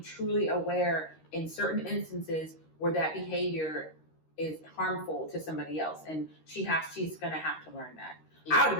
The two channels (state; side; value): late; right; 13 ms